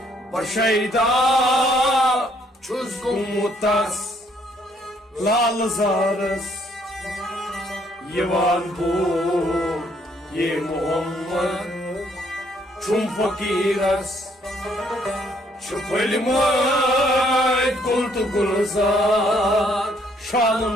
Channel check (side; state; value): both; normal; correlation 0.67